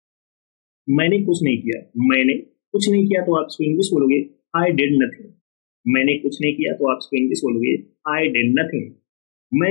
मैंने कुछ नहीं किया। मैंने कुछ नहीं किया तो आप इसको इंग्लिश बोलोगे आई डिड नथिंग। मैंने कुछ नहीं किया तो आप इसको इंग्लिश बोलोगे आई डिड नथिंग।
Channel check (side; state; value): right; silent; digital silence